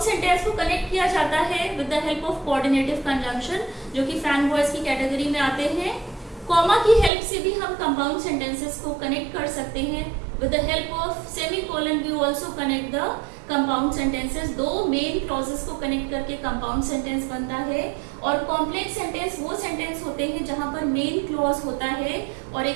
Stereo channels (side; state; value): left; drops out; at 7.1 s